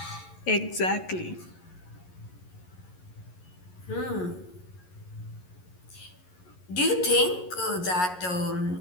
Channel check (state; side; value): late; right; 11 ms